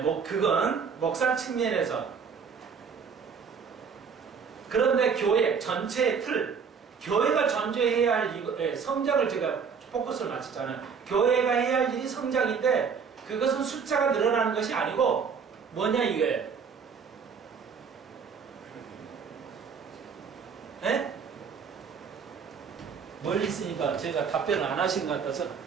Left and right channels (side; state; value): left; quieter; 6.2 dB